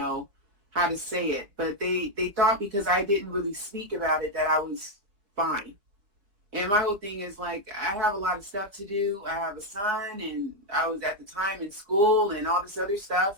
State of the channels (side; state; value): left; late; 4.8 ms